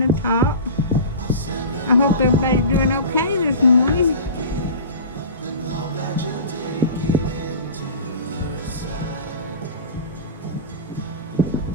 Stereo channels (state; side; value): inverted; both; correlation -0.34